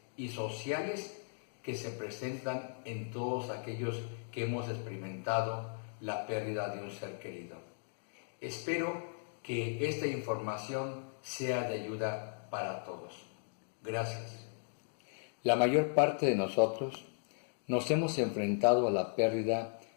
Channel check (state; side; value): silent; right; digital silence